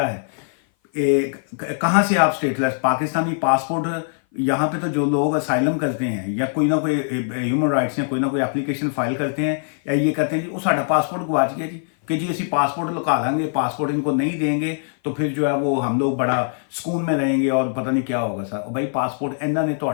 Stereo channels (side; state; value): right; silent; 57 dB below the other